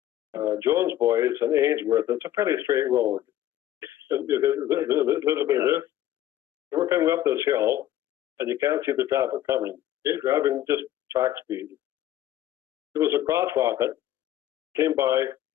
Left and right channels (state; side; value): quieter; right; 12.7 dB